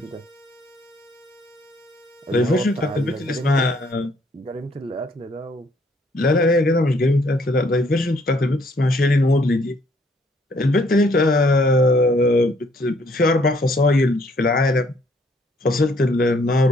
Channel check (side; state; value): both; normal; correlation 0.66